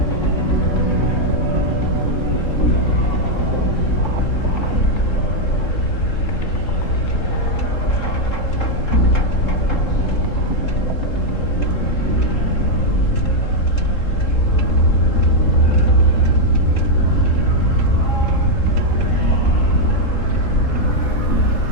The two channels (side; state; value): right; late; 3.7 ms